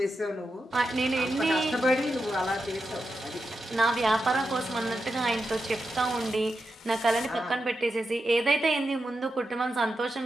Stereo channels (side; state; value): both; normal; correlation 0.88